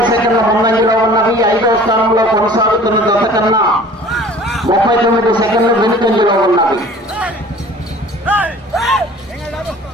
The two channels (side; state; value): both; normal; correlation 0.47